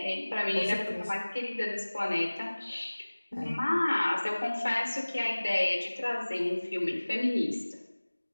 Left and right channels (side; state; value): both; inverted; correlation -1.00